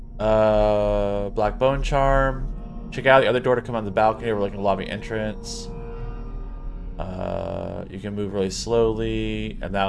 Black Bone Charm. Check out the other door to come on the balcony overlooking the lobby entrance. You can move really slowly, and that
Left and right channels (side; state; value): both; identical; correlation 1.00